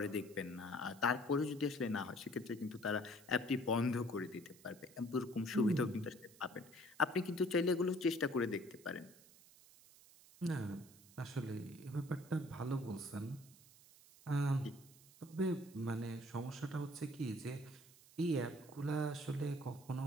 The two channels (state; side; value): noise; right; hiss, 23 dB below the sound